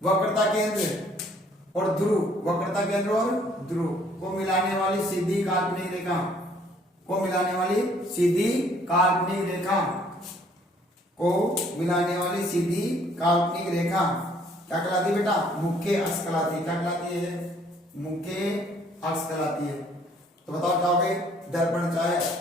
वक्रता केंद्र और ध्रुव, वक्रता केंद्र और ध्रुव को मिलाने वाली सीधी काल्पनिक रेखा, को मिलाने वाली सीधी काल्पनिक रेखा, को मिलाने वाली सीधी काल्पनिक रेखा क्या कहलाती है बेटा, मुख्य अक्ष कहलाती है। क्या कहलाती है, मुख्य अक्ष कहलाती है। तो बताओ क्या हो गए, दर्पण चाहे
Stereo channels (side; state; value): both; normal; correlation 0.61